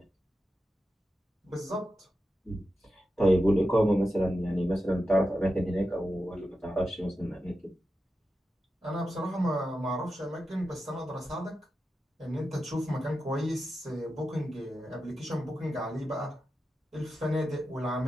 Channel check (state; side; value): normal; both; correlation 0.90